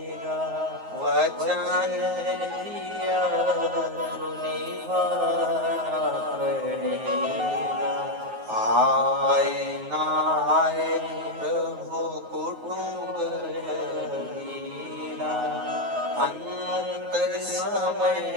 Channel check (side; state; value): left; late; 9.4 ms